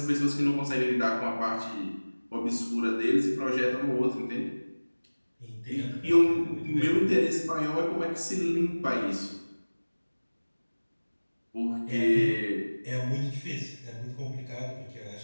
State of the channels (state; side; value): inverted; both; correlation -1.00